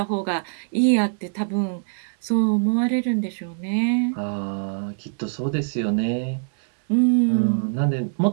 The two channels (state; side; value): silent; left; digital silence